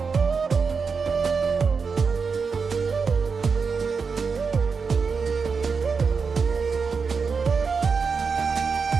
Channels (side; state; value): left; quieter; 5.3 dB